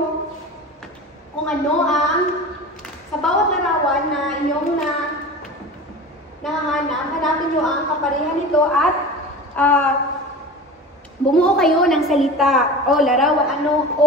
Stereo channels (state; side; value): normal; both; correlation 0.34